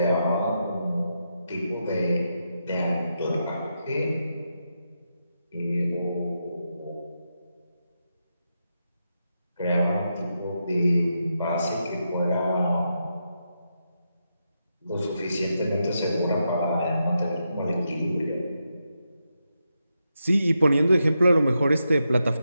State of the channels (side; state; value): both; inverted; correlation -0.85